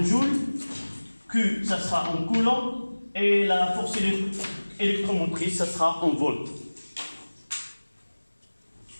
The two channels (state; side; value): inverted; both; correlation -1.00